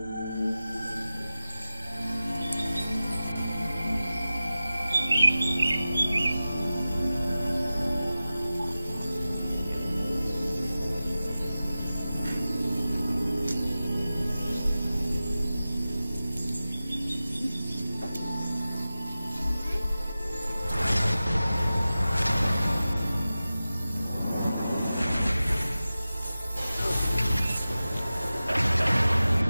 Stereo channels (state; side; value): inverted; both; correlation -0.95